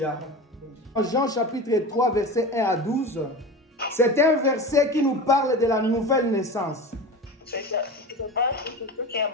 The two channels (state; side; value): normal; both; correlation 0.29